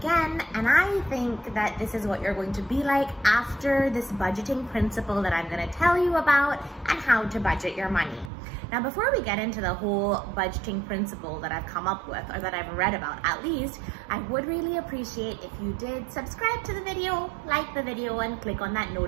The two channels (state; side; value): drops out; left; at 8.3 s